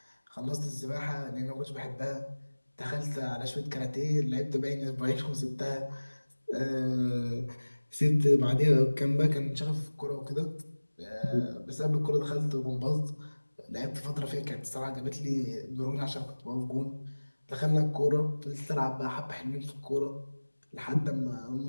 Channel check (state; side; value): inverted; both; correlation -1.00